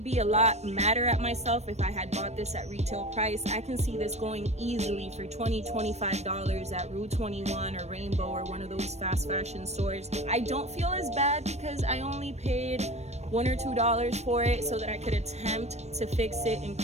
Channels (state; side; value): late; left; 0.32 ms